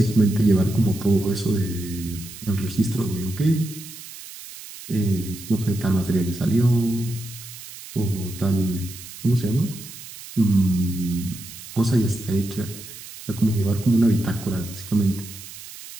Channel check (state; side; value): noise; right; hiss, 14 dB below the sound